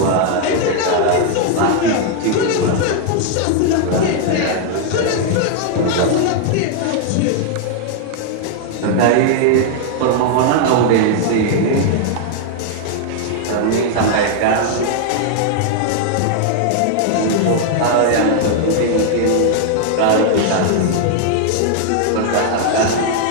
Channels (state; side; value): different; both; correlation 0.00